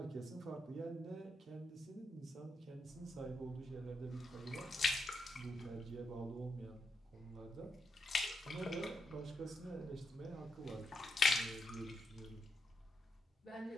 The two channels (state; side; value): normal; both; correlation 0.83